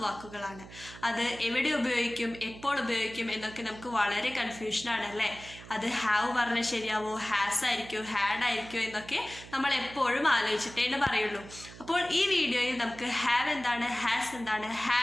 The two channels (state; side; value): noise; right; hum, 17 dB below the sound